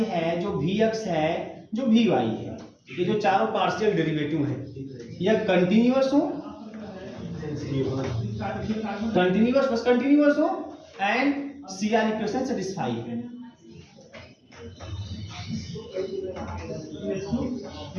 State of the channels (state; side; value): identical; both; correlation 1.00